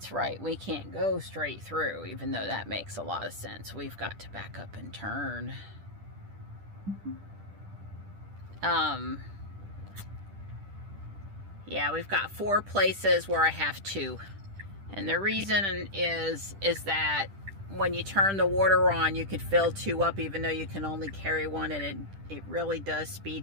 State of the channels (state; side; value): late; left; 10 ms